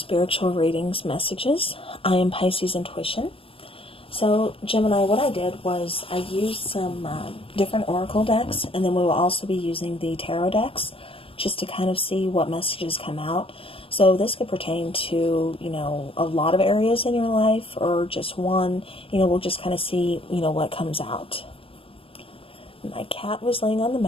readings messages. I am Pisces Intuition. So, Gemini, what I did was I used some different oracle decks, and then we will also be using the tarot decks just to kind of see what messages come out. So this could pertain to, a lot of areas in your life or just one. We'll just kind of see, what comes out. My cat was laying on the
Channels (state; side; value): late; right; 0.27 ms